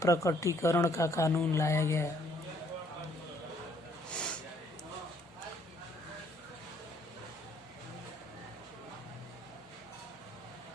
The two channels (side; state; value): both; normal; correlation 0.65